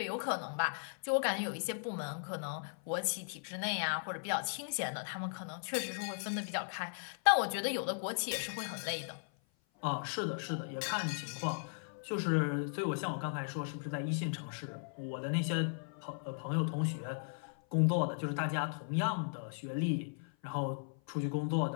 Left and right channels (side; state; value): right; silent; 53 dB below the other